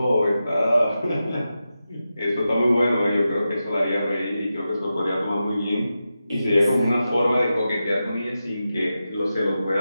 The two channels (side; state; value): both; inverted; correlation -0.91